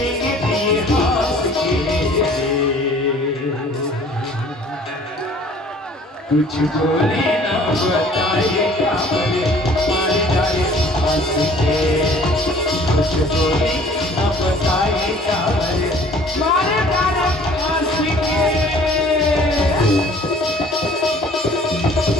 दिए हंस के, कुछ बोले ना बताए काबरे मारे डाले हंस के, कुछ बोले ना बताए काबरे मारे डाले हंस के।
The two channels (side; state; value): both; normal; correlation 0.52